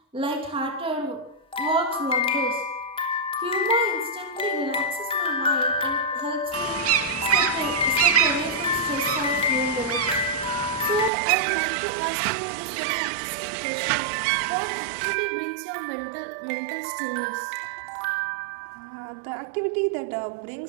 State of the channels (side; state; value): left; drops out; at 11.1 s